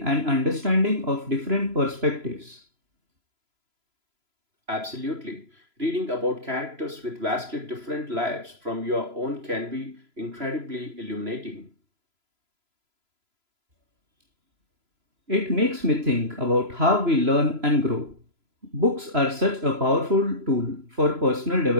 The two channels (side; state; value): left; late; 3.0 ms